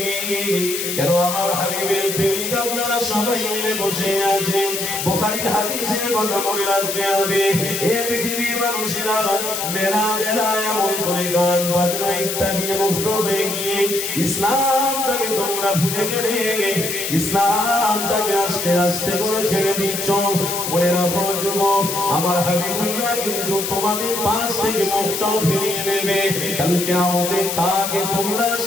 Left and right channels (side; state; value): left; noise; hiss, 3 dB below the sound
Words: কেন আমার হাবিবের প্রেমিক আপনারা সবাই মিলে বসে আছেন, বুখারীর হাদিসের কথা মনে রাখতে হবে। এই পৃথিবীর মানুষেরা মেলা মেলা এমন করে গান বাজনা ইত্যাদি মুগ্ধ হয়ে গিয়ে ইসলামটাকে তোমরা ভুলে গেলে, ইসলামটাকে আস্তে আস্তে করে ছেড়ে দিচ্ছ। মনে রাখো যুবক, আমার হাবিবুল্লাহ কিন্তু তোমাদের পাশ থেকে মুখটাও ফিরিয়ে নেবে। কাল কিয়ামতে তাকে তোমরা